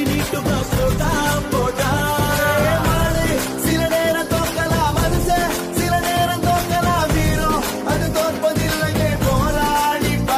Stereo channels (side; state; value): both; identical; correlation 1.00